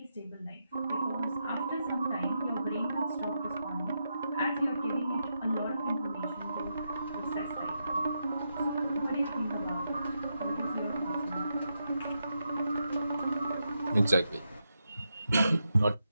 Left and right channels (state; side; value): inverted; both; correlation -0.84